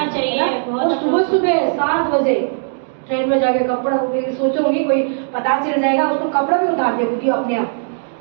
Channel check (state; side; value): silent; left; digital silence